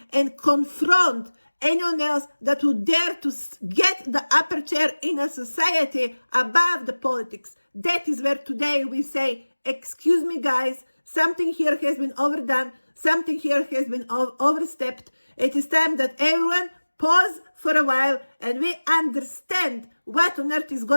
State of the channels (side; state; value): both; inverted; correlation -1.00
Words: and confront anyone else that would dare to get the upper chair in a society above the politics. That is where today we say, excuse me guys, something here has been overdone, something here has been overstepped. It is time that everyone pause for a while and we understand what on earth is